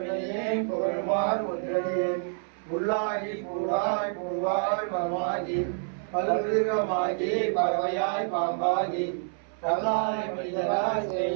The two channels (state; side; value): silent; left; 59 dB below the other